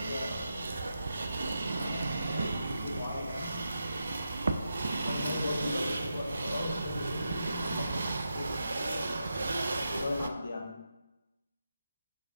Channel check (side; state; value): both; inverted; correlation -0.87